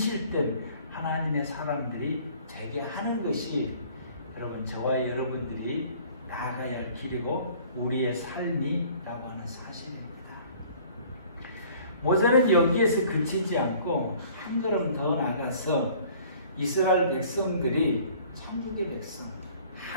하나님의 사람들이 되게 하는 것이 여러분 저와 여러분들이 나아가야 할 길이고 우리의 삶이라고 하는 사실입니다. 모세는 여기에서 그치지 않고 한 걸음 더 나가서 이스라엘 백성들이 천국의 백성,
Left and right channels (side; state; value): both; inverted; correlation -0.53